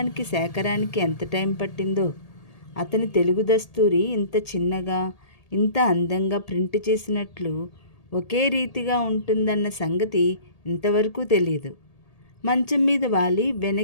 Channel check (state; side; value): late; right; 1.8 ms